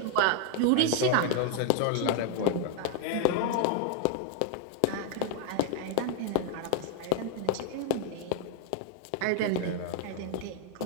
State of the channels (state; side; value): different; both; correlation 0.00